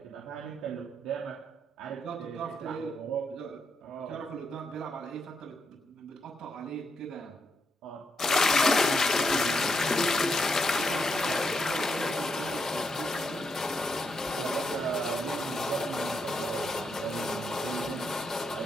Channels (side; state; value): both; normal; correlation 0.80